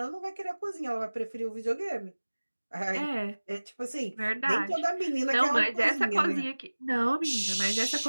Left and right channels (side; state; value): both; inverted; correlation -1.00